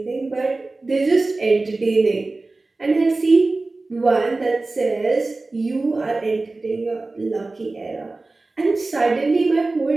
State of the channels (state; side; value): quieter; left; 3.3 dB